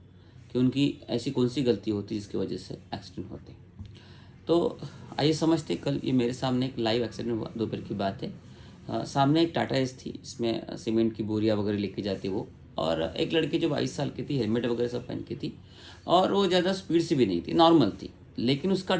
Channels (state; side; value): identical; both; correlation 1.00